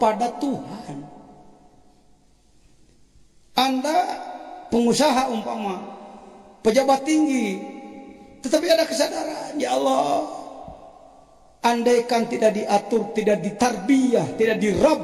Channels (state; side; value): identical; both; correlation 1.00